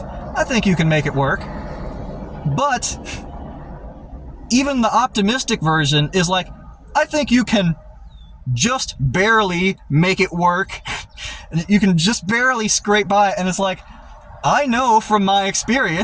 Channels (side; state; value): both; identical; correlation 1.00